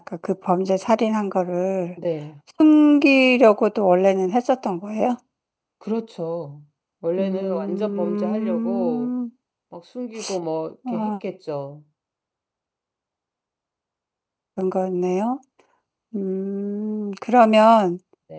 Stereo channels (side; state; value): both; identical; correlation 1.00